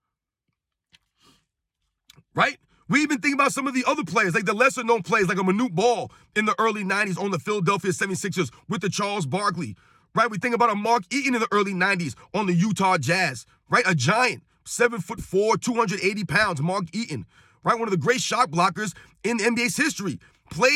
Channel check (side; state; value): both; identical; correlation 1.00